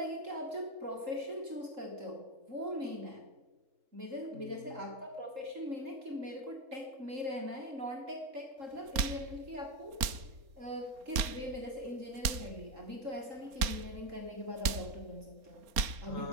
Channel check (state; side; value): late; left; 3.7 ms